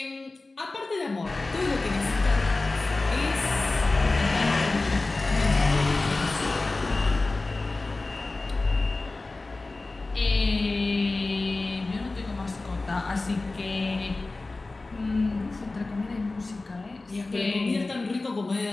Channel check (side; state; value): right; quieter; 3.3 dB